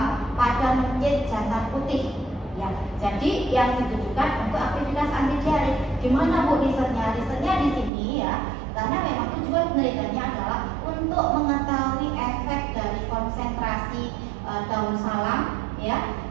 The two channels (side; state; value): left; drops out; at 7.9 s